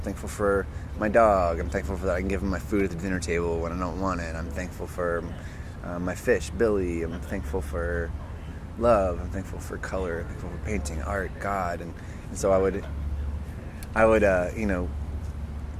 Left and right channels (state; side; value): identical; both; correlation 1.00